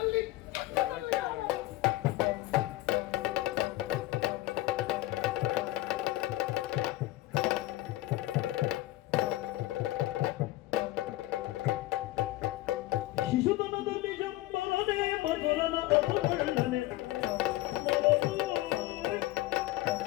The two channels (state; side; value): quieter; right; 17.6 dB